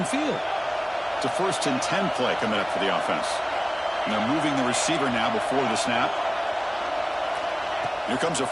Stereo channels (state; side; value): identical; both; correlation 1.00